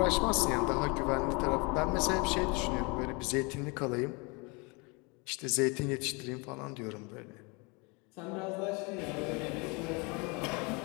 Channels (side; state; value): right; quieter; 29.5 dB